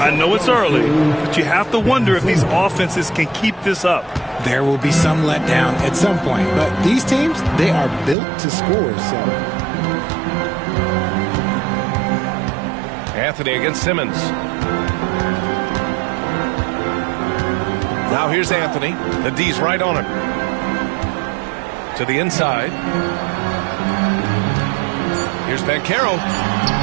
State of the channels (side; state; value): left; drops out; at 8.2 s